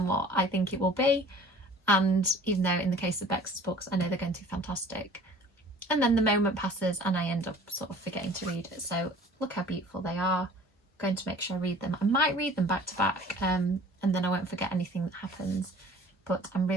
what I think it will be. And even though in the case of Bex's books, I know they're going to be fantastic. And then the moment passes and I end up sort of forgetting to read it. So look how beautiful they are. I'm going to make sure I read them. I might read them back to back, and then I won't forget anything that happens. But I'm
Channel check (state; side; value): normal; both; correlation 0.48